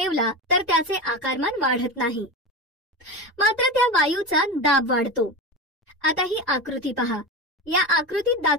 तर त्याचे आकारमान वाढत नाही, मात्र त्या वायूचा दाब वाढतो. आता ही आकृती पहा. या आकृतीत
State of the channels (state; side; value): normal; both; correlation 0.22